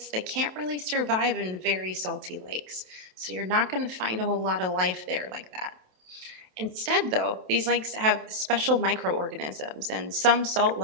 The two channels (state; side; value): late; left; 27 ms